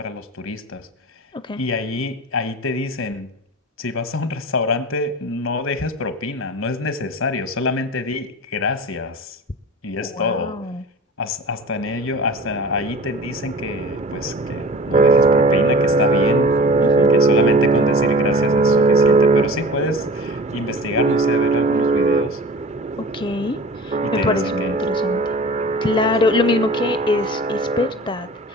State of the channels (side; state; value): both; normal; correlation 0.39